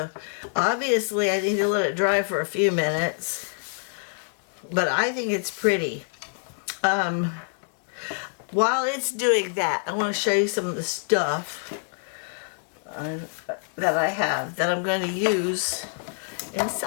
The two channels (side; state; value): right; silent; digital silence